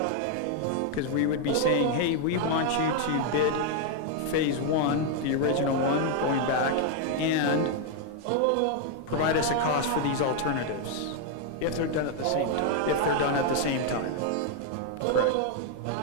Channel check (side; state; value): both; different; correlation 0.00